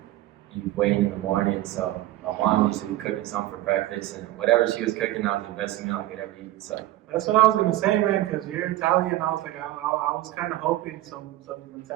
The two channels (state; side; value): quieter; left; 15.4 dB